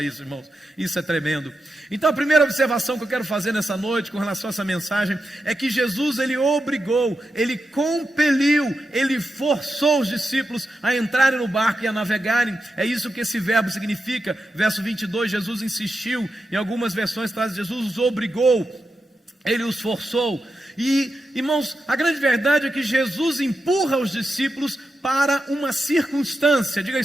irmãos, isso é tremendo. Então a primeira observação que eu quero fazer nessa noite com relação a essa mensagem é que Jesus, ele obrigou, ele compeliu, ele forçou os discípulos a entrarem no barco e a navegarem. É isso que esse verbo significa. Verso 22, Jesus insistiu. Em algumas versões traz: Jesus os obrigou, ele os forçou. E, irmãos, a grande verdade é que Jesus empurra os discípulos para uma circunstância. Diga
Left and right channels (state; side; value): normal; both; correlation 0.88